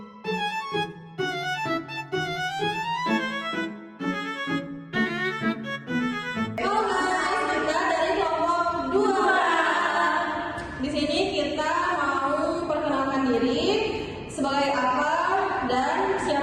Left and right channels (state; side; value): identical; both; correlation 1.00